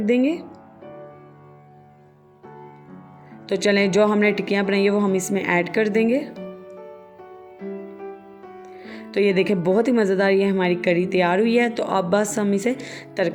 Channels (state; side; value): identical; both; correlation 1.00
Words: तो चलें, जो हमने टिक्कियाँ बनाई है वो हम इसमें ऐड कर देंगे। तो ये देखें बहुत ही मज़ेदार ये हमारी करी तैयार हुई है। तो अब बस हम इसे